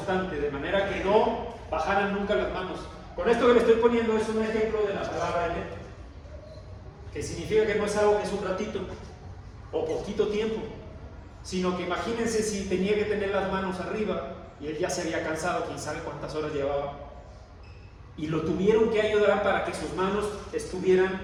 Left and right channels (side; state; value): both; identical; correlation 1.00